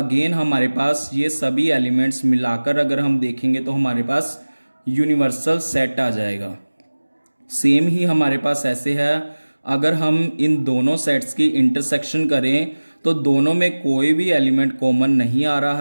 हमारे पास ये सभी एलिमेंट्स मिलाकर अगर हम देखेंगे तो हमारे पास यूनिवर्सल सेट आ जाएगा। सेम ही हमारे पास ऐसे है, अगर हम इन दोनों सेट्स की इंटरसेक्शन करें तो दोनों में कोई भी एलिमेंट कॉमन नहीं आ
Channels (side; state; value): both; inverted; correlation -1.00